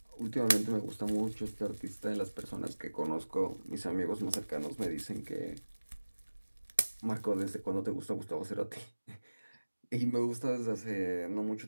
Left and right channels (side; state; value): both; inverted; correlation -1.00